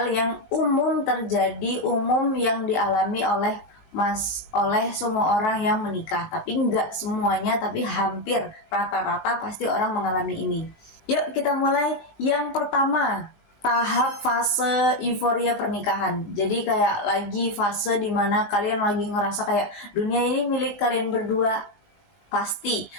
yang umum terjadi, umum yang dialami oleh semua orang yang menikah. Tapi nggak semuanya, tapi hampir rata-rata pasti orang mengalami ini. Yuk kita mulai. Yang pertama, tahap fase euforia pernikahan. Jadi kayak lagi fase dimana kalian lagi ngerasa kayak dunia ini milik kalian berdua. Pasti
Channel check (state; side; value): late; right; 20 ms